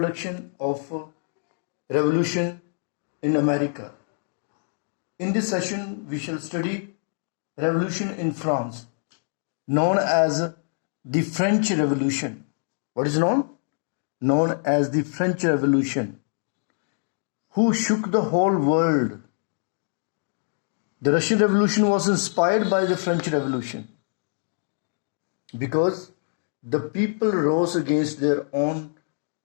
of revolution in America. In this session, we shall study revolution in France, known as the French Revolution. What is known? Known as the French Revolution, who shook the whole world. The Russian Revolution was inspired by the French Revolution because the people rose against their own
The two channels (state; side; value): silent; right; digital silence